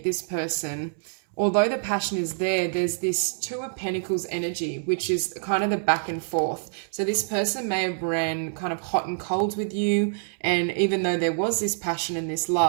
this person, although the passion is there, there's this Two of Pentacles energy, which is kind of the back and forth. So this person may have ran kind of hot and cold with you, and even though there was this passion and this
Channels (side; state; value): left; silent; 61 dB below the other